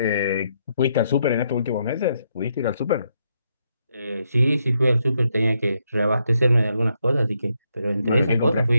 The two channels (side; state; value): both; inverted; correlation -0.78